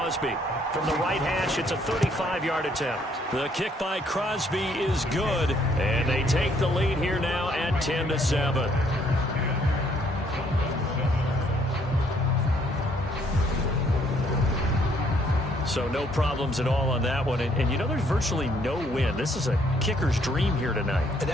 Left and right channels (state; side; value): normal; both; correlation 0.66